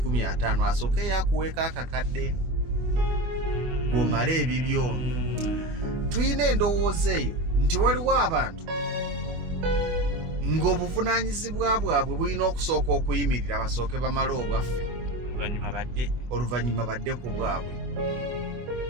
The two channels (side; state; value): left; late; 25 ms